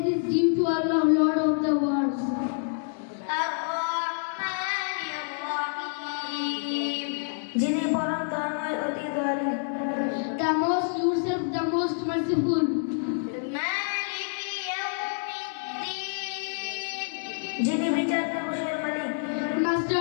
is due to Allah, Lord of the worlds. যিনি পরম দয়াময় অতি দয়ালু। The most yourself, the most merciful. যিনি বিচার দিবসের মালিক। Master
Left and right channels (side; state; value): right; silent; digital silence